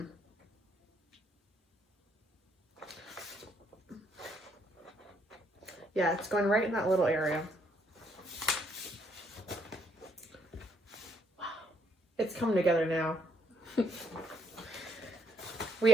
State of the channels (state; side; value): normal; both; correlation 0.72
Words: Yeah, it's going right in that little area. Wow. It's coming together now. We